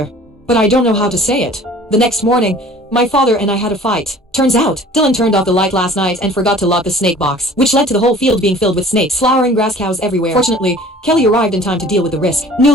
but I don't know how to say it. The next morning, my father and I had a fight. Turns out, Dylan turned off the light last night and forgot to lock the snake box, which led to the whole field being filled with snakes, flowering grass cows everywhere. Fortunately, Kelly arrived in time to deal with the risk.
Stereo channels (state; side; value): normal; both; correlation 0.48